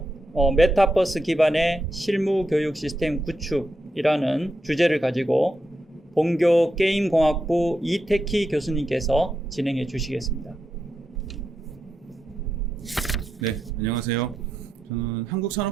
메타버스 기반의 실무 교육 시스템 구축이라는 주제를 가지고 본교 게임공학부 이태키 교수님께서 진행해 주시겠습니다. 네, 안녕하세요. 저는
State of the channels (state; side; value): normal; both; correlation 0.85